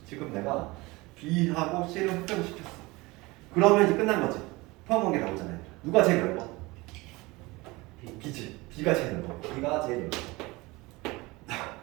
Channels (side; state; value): left; quieter; 22.5 dB